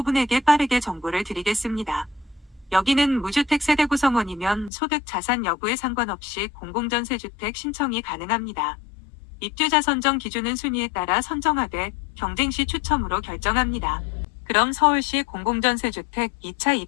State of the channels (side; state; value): right; drops out; at 4.7 s